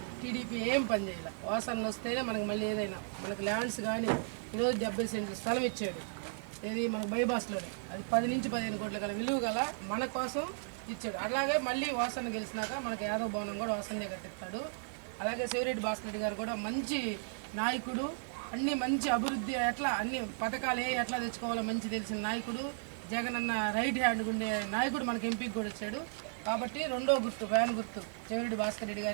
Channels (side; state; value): left; silent; digital silence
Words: టీడీపీ ఏం పని చేయాలి. వాసనలు వస్తేనే మనకి మళ్ళీ ఏదైనా మనకి ల్యాండ్స్ కానీ ఈరోజు 70 సెంట్లు స్థలం ఇచ్చాడు. ఏది మన బైబాస్లోనే అది 10 నుంచి 15 కోట్ల గల విలువ గల మన కోసం ఇచ్చాడు. అలాగే మళ్ళీ వాసన గెలిచినాక మనకి యాదవ్ భవనం కూడా వాసనే కట్టిస్తాడు. అలాగే చెవిరెడ్డి భాస్కర్ రెడ్డి గారు కూడా మంచి నాయకుడు, అన్ని మంచి అభివృద్ధి ఎట్లా అన్ని పథకాలు ఎట్లా తెచ్చుకోవాలో మంచి తెలిసిన నాయకుడు, జగన్ అన్న రైట్ హ్యాండ్ ఉండే నాయకుడు మనకి ఎంపీకి కూడా వచ్చాడు. కాబట్టి 2వ గుర్తు ఫ్యాన్ గుర్తు చెవిరెడ్డి భాస్కర్ రెడ్డి